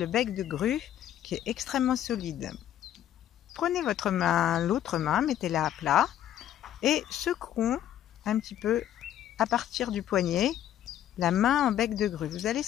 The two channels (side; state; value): right; quieter; 11.4 dB